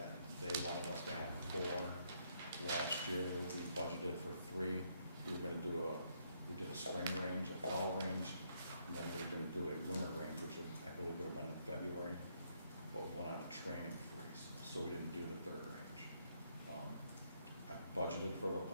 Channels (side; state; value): both; inverted; correlation -0.73